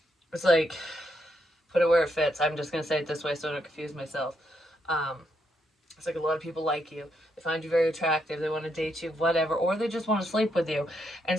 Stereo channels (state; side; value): normal; both; correlation 0.78